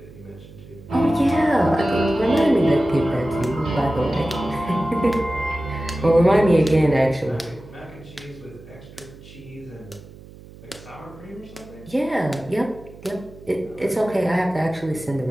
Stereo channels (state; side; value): noise; right; hum, 19 dB below the sound